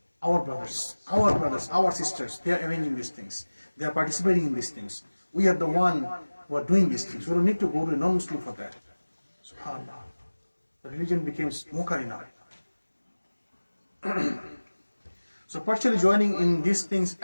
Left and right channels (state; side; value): inverted; both; correlation -1.00